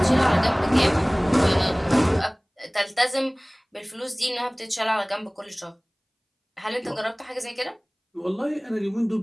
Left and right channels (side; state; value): both; identical; correlation 1.00